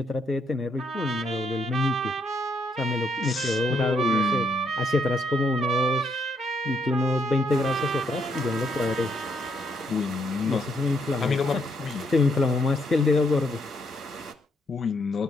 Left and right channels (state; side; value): normal; both; correlation 0.75